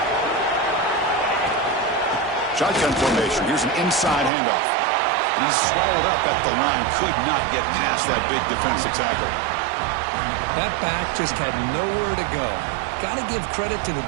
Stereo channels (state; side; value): drops out; left; at 4.3 s